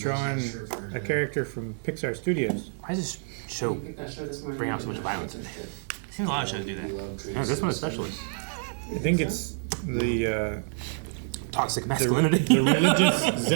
a character from Pixar Studios. Why does this show bring out so much violence in it? Seems a lot of shows do that. Yeah, this one especially. I think it's the Toxic masculinity. the religious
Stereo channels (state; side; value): silent; left; digital silence